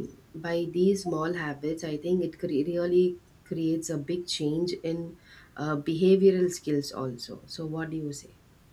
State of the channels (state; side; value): identical; both; correlation 1.00